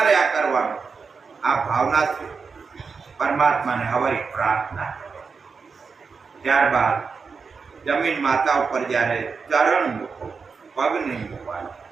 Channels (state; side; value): quieter; left; 5.1 dB